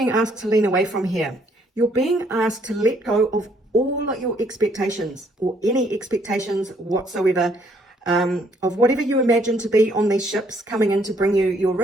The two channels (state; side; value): normal; both; correlation 0.67